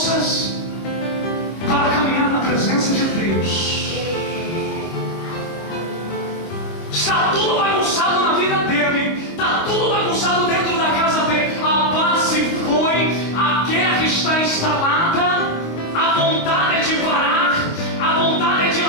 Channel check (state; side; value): late; right; 25 ms